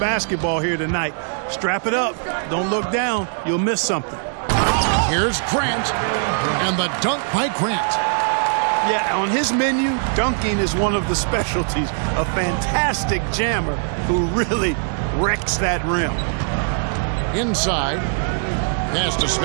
here tonight. Strap it up. Don't look down. You'll miss something. Here's Grant, and the dunk by Grant. Yeah, on his menu, dunking is one of the specialties. A fantastic jammer who really wrecks that rim. Inside. Pass to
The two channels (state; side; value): silent; left; 65 dB below the other